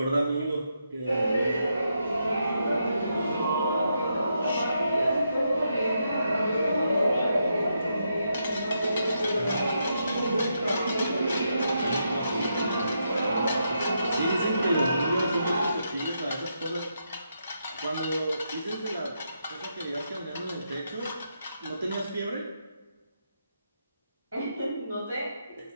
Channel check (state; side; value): inverted; both; correlation -0.81